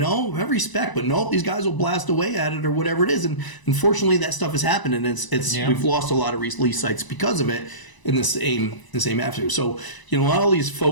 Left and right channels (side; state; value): right; late; 1.0 ms